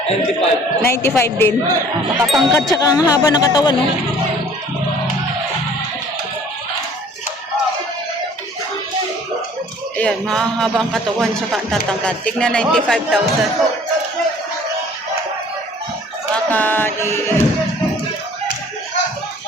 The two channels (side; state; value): both; normal; correlation 0.52